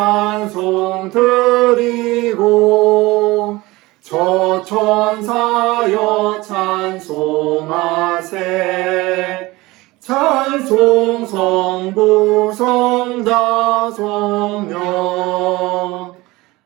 드리고 저 천사여 찬송하세. 찬송 성부 성자 성령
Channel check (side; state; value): left; quieter; 20.9 dB